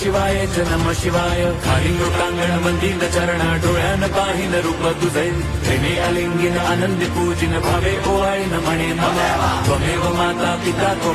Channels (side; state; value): both; identical; correlation 1.00